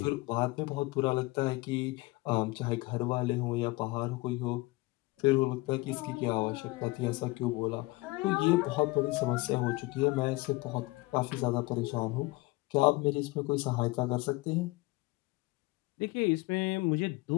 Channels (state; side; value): quieter; right; 22.2 dB